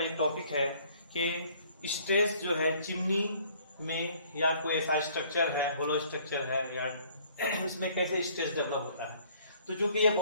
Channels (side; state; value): both; inverted; correlation -0.58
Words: एक टॉपिक है कि स्ट्रेस जो है चिमनी में या कोई ऐसा स्ट्रक्चर है, होलो स्ट्रक्चर है या उसमें कैसे स्ट्रेस डेवलप होता है। तो जो कि ये